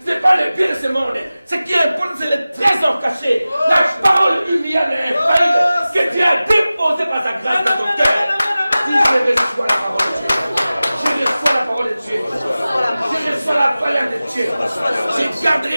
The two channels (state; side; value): inverted; both; correlation -0.96